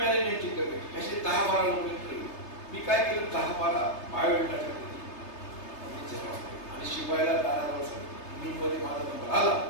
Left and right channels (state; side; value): late; right; 3.3 ms